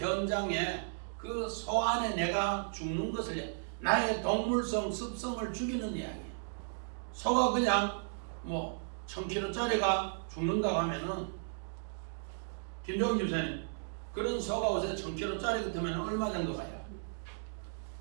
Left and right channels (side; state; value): left; silent; digital silence